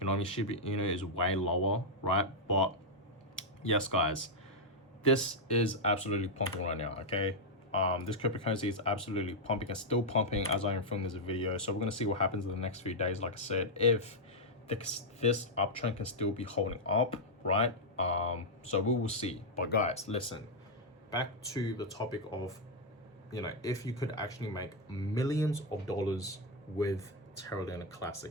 know what I mean? Shiba Inu is way lower, right? But yes, guys, this is absolutely pumping right now, okay? This cryptocurrency is absolutely pumping and still pumping as I am filming this video. So we're going to see what happens in the next few days. Like I said, if this uptrend can still be holding up, right? So we will see. But guys, listen, back to the topic of, you know, if you could actually make millions of dollars with Terra Luna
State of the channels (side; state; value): both; normal; correlation -0.02